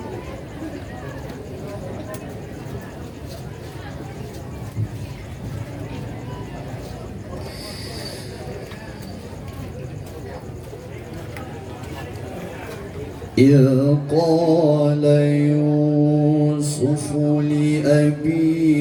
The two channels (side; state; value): both; identical; correlation 1.00